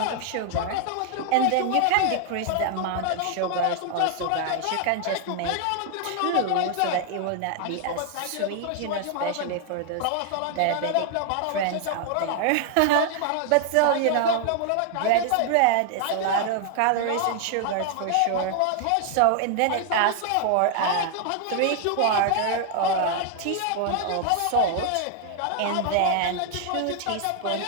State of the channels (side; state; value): both; different; correlation 0.00